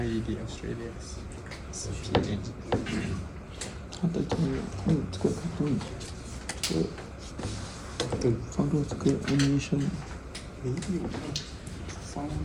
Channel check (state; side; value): identical; both; correlation 1.00